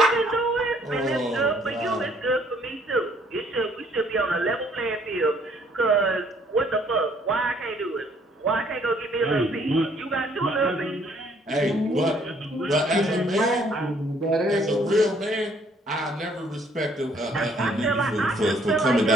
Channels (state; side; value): normal; both; correlation 0.63